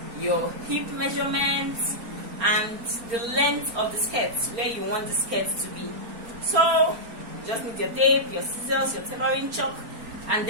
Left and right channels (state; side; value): late; left; 4.4 ms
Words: your hip measurements, and the length of the skirt, where you want the skirt to be. So you just need your tape, your scissors, your tailoring chalk, and